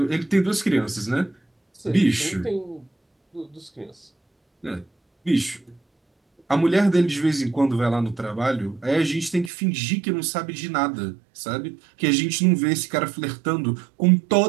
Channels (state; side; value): drops out; left; at 9.5 s